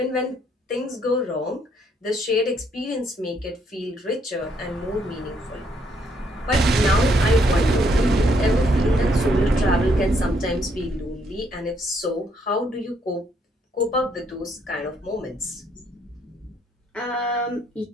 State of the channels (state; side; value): normal; both; correlation 0.71